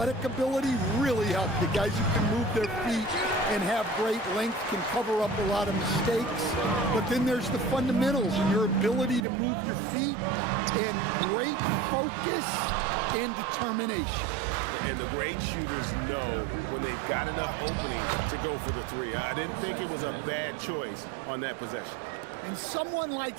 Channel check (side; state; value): left; drops out; at 9.2 s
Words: ability really help. The guys who can move their feet and have great length can cover up a lot of mistakes. But then there's the fundamentals and your ability to move your feet and great focus and determination. And the great shooters know when they've got enough opening to go for the three. I didn't think it was a bad choice on that possession. And someone like